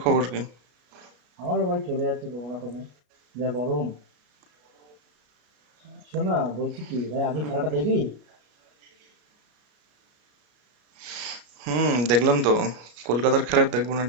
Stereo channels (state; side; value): late; left; 33 ms